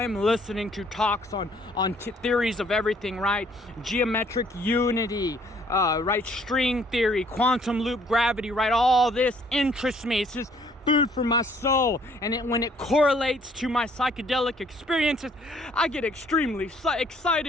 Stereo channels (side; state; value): both; normal; correlation 0.62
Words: am listening to talks on theories of everything, right? Geometric unity, right? String theory, quantum loop gravity, right? All this interests me. It's just food for my soul. And when it correlates to my psychedelic experiences, I get extremely